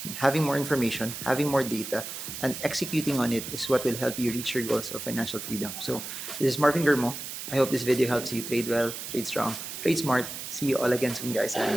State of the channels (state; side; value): noise; right; hiss, 8 dB below the sound